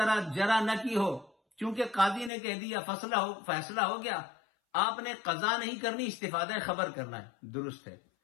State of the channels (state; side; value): drops out; right; at 2.3 s